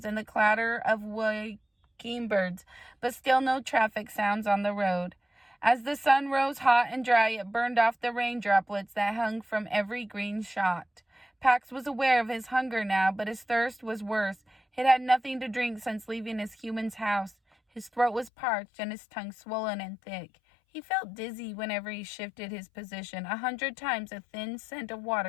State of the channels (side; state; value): right; drops out; at 18.3 s